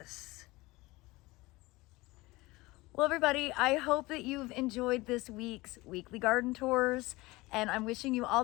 Well, everybody, I hope that you've enjoyed this week's weekly garden tours, and I'm wishing you all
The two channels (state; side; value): quieter; right; 21.2 dB